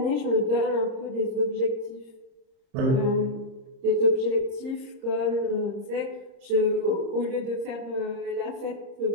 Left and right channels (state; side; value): late; left; 30 ms